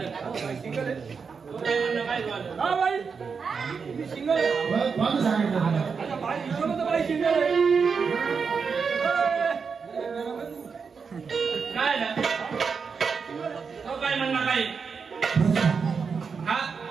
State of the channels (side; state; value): left; quieter; 5.6 dB